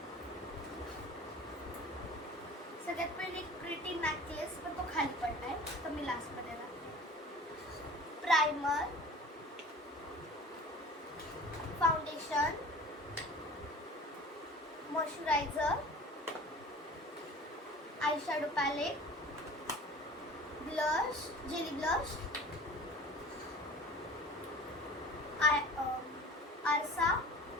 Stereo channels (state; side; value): normal; both; correlation 0.41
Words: सगळ्यात पहिले प्रिटी नेकलेस, पण तो खाली पडलाय तर मी लास्ट मध्ये दाखवते. Primer, foundation, moisturiser, eyeshadow palette, blush, jelly blush, आरसा